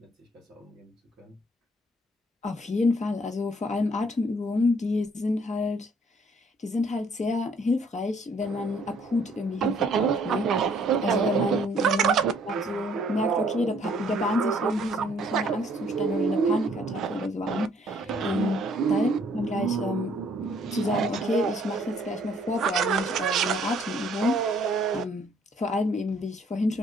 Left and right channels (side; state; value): both; normal; correlation 0.63